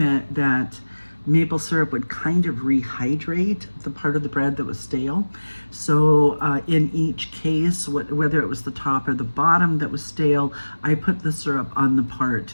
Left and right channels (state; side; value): inverted; both; correlation -1.00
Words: maple syrup would kind of rehydrate the part of the bread that was stale. So in each case, whether it was the top or the bottom that was stale, I put the syrup on the